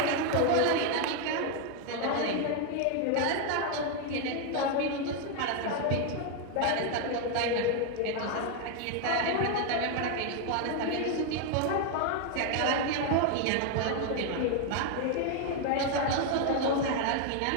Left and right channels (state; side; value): different; both; correlation 0.01